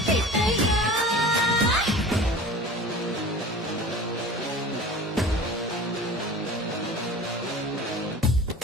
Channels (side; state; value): both; normal; correlation 0.39